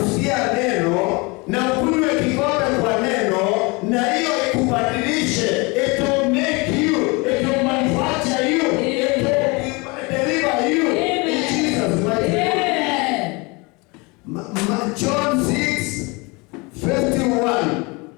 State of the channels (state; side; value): quieter; right; 27.3 dB